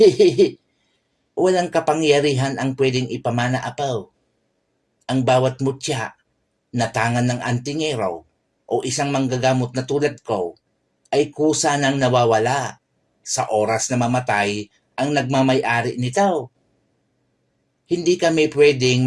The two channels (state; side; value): identical; both; correlation 1.00